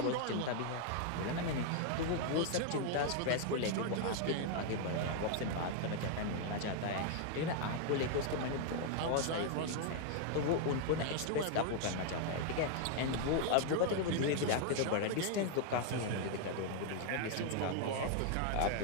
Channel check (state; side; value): different; both; correlation 0.00